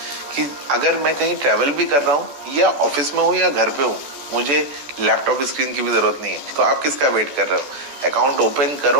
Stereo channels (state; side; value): late; left; 14 ms